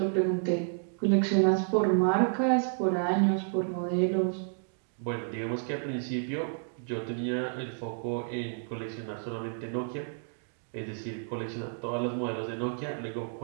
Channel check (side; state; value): left; silent; digital silence